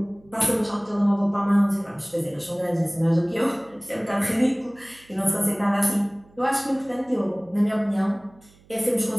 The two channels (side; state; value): right; noise; hum, 28 dB below the sound